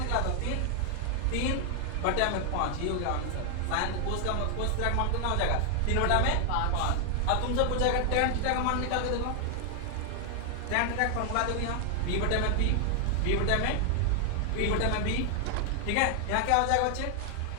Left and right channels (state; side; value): different; both; correlation 0.00